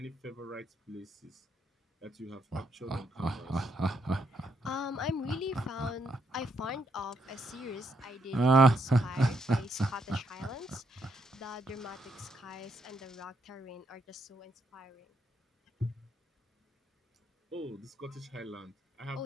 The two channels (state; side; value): normal; both; correlation 0.76